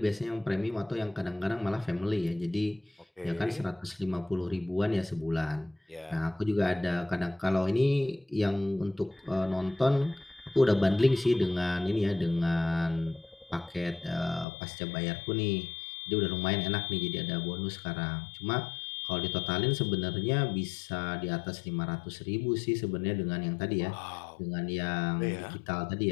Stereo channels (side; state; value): right; drops out; at 14.5 s